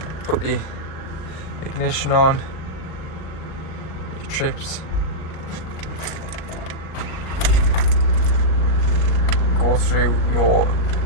put the ignition on, your trips go through your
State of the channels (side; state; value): right; late; 38 ms